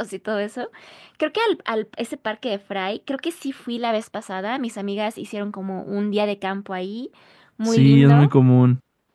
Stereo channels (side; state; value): both; identical; correlation 1.00